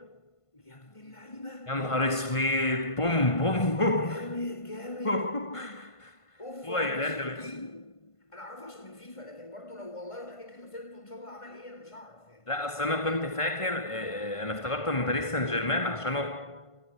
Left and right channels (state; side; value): late; right; 1.5 ms